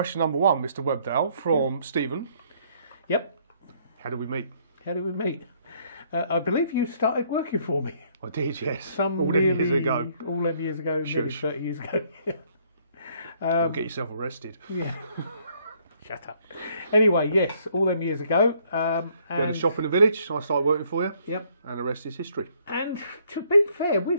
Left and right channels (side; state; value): both; inverted; correlation -0.66